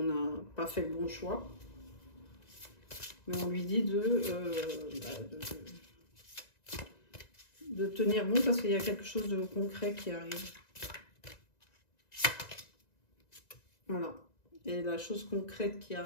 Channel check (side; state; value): right; late; 1.9 ms